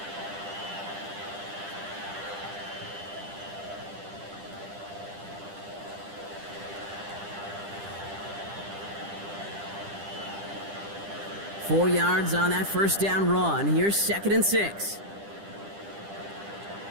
Four yards on that first down run. Here's 2nd and 6.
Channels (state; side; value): late; left; 10 ms